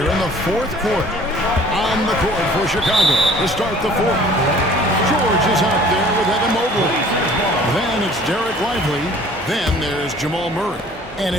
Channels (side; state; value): both; normal; correlation 0.51